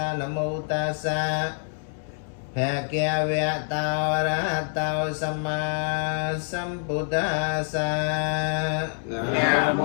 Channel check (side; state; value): right; silent; 61 dB below the other